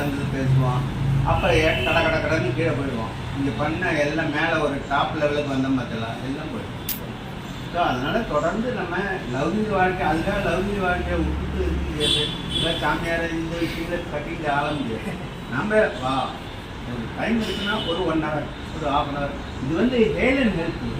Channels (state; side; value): identical; both; correlation 1.00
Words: வந்து பேசுவான். அப்புறம் கடன்னு கீழே போயிடுவான். இங்கே பண்ண எல்லாம் மேலே ஒரு டாப் லெவலுக்கு வந்தோம் பார்த்தலாம், எல்லாம் போயிடும். ஸோ அதனால் தொடர்ந்து நம்ம லௌகிக வாழ்க்கை, அதுக்காக லௌகிக வாழ்க்கையை விட்டுட்டு இருக்க முடியாது. இல்லை சாமியாரை இந்த விஷயங்களை கட்டிட்டு ஆள முடியாது. நம்ம ஒரு டைம் இருக்குன்னா ஒரு 1 hour, ஒரு 1/2 hour. இது வந்து ஹெல்த் அண்ட்